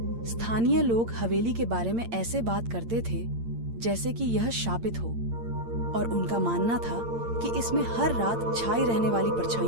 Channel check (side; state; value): left; late; 8.8 ms